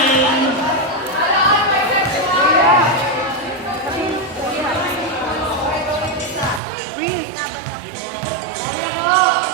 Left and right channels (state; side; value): drops out; left; at 6.6 s